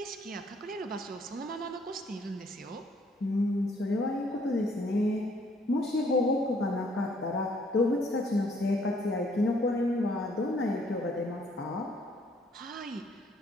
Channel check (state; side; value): normal; both; correlation 0.65